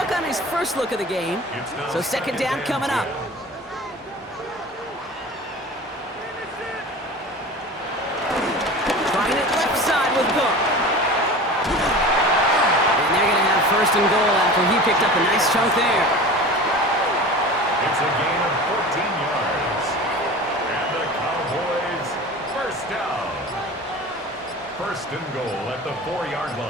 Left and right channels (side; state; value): both; normal; correlation 0.36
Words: on his first look of the game. So 2nd down coming up. Trying it left side with Cook. And they're going to have 1st and goal after he picked up a nice chunk there. It's a gain of 14 yards. And the Cowboys, 1st down. 1st and goal at the 4-yard